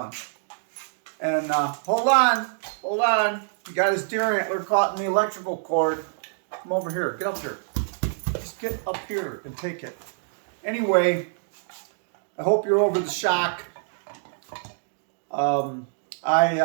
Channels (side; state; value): left; silent; digital silence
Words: And hold on. He got his deer antler caught in the electrical cord. Come over here, get up here. Just get up here and take it. Anyway, I hope you're over the shock. I